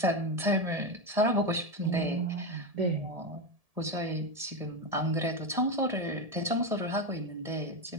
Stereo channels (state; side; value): late; left; 1.7 ms